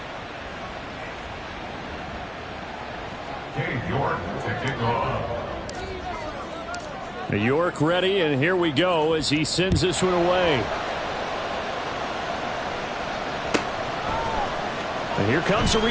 Cade York to kick off. New York ready, and here we go as he sends this one away. And here comes a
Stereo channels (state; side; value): identical; both; correlation 1.00